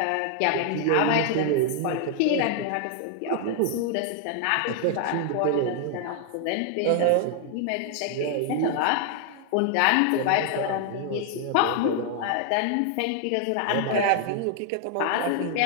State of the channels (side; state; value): both; different; correlation 0.00